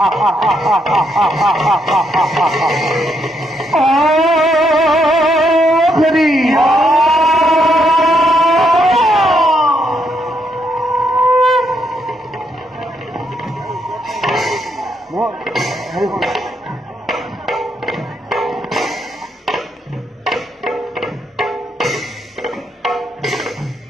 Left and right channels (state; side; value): normal; both; correlation 0.77